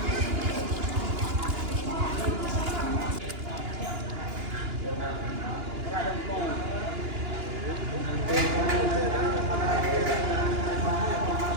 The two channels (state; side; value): late; left; 2.9 ms